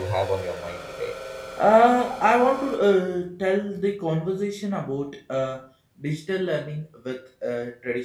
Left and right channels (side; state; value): both; identical; correlation 1.00